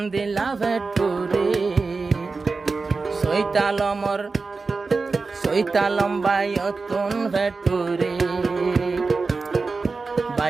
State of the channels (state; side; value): quieter; left; 4.1 dB